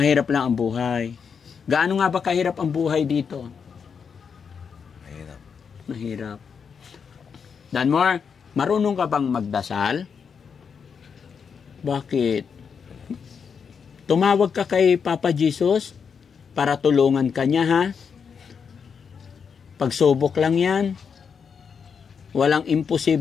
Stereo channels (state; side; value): quieter; right; 6.4 dB